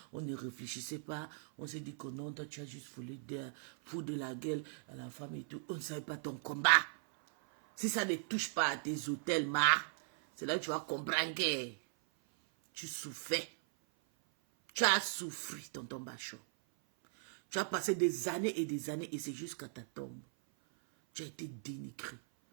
on ne réfléchissait pas. On s'est dit que non, toi, tu as juste voulu foutre de la gueule à la femme et tout. On ne savait pas ton combat. Si ça ne touche pas à tes hôtels, c'est là que tu vas comprendre que tu souffrais. Tu as souffert, Tonton Bachot. Tu as passé des années et c'est jusqu'à ta tombe. Tu as été dénigré.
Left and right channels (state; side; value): silent; left; 52 dB below the other